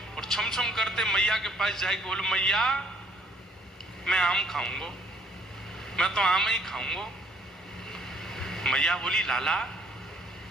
और छम छम करते मैया के पास जाके बोले मैया मैं आम खाऊंगा, मैं तो आम ही खाऊंगा। मैया बोली लाला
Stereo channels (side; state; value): both; normal; correlation 0.63